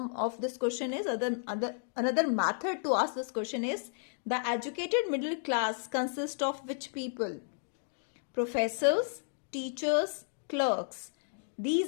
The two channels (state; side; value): silent; right; digital silence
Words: of this question is, another method to ask this question is, the educated middle class consists of which people? Professors, teachers, clerks.